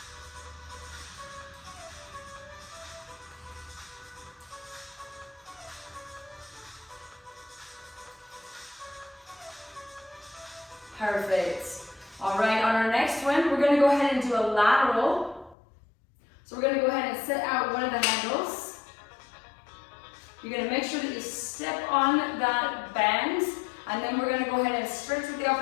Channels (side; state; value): right; drops out; at 15.6 s